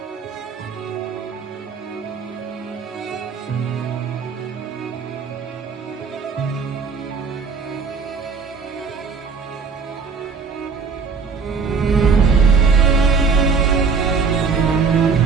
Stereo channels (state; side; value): quieter; left; 5.3 dB